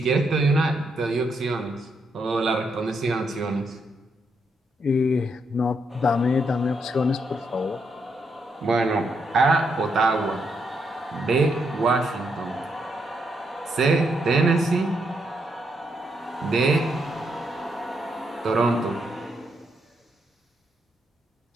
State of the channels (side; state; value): both; normal; correlation 0.78